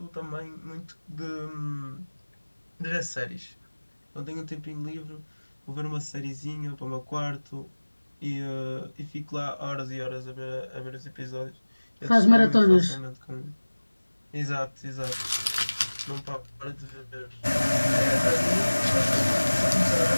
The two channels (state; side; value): inverted; both; correlation -1.00